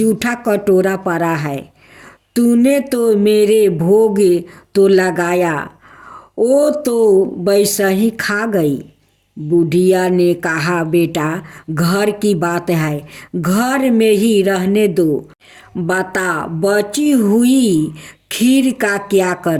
कटोरा पड़ा है, तूने तो मेरे भोग तो लगाया, वो तो वैसा ही खा गई। बुढ़िया ने कहा, बेटा घर की बात है, घर में ही रहने दो, बता बची हुई खीर का क्या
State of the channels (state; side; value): identical; both; correlation 1.00